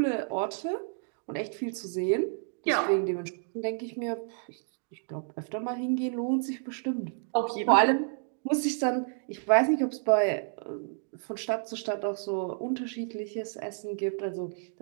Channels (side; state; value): left; silent; digital silence